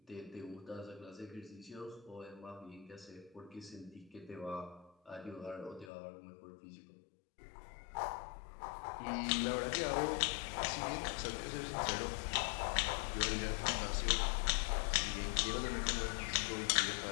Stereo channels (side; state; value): right; drops out; at 5.9 s